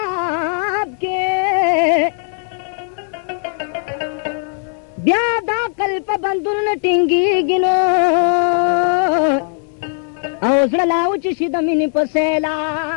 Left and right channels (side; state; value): right; silent; 56 dB below the other